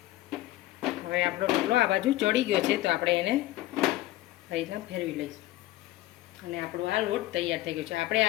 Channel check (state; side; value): quieter; right; 16.3 dB